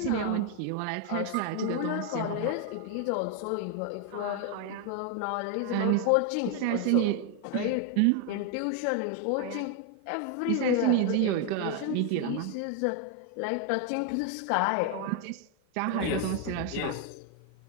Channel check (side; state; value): both; different; correlation 0.01